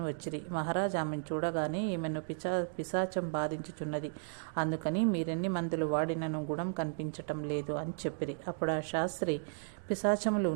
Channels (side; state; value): left; silent; digital silence